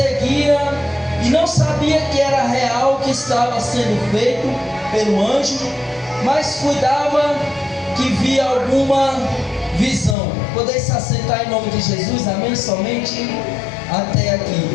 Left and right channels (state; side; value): drops out; right; at 10.2 s